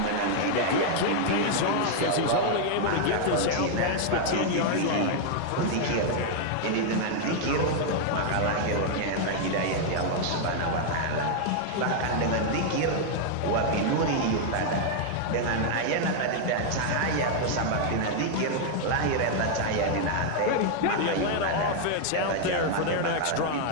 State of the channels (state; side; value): different; both; correlation 0.00